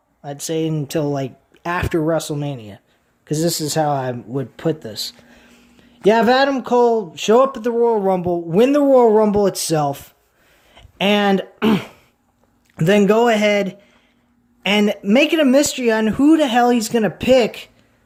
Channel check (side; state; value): both; identical; correlation 1.00